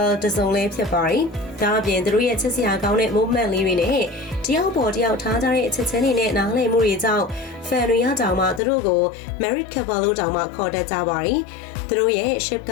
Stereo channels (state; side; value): drops out; right; at 8.6 s